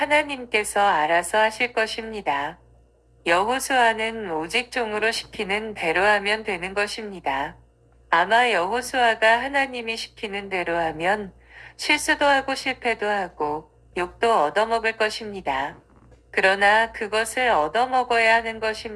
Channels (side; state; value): both; identical; correlation 1.00